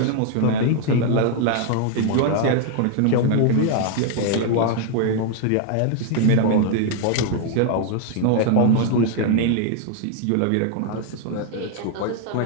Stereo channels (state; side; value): different; both; correlation 0.00